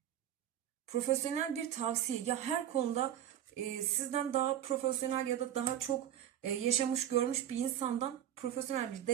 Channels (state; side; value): quieter; left; 10.9 dB